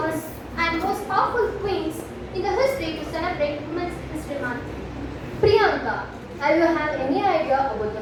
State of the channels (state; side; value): identical; both; correlation 1.00